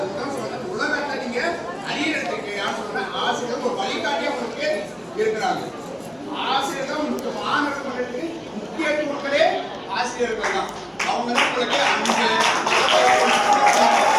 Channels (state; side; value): identical; both; correlation 1.00